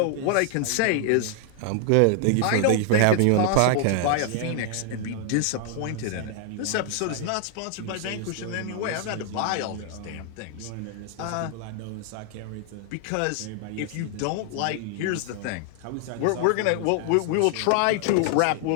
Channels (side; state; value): both; different; correlation 0.00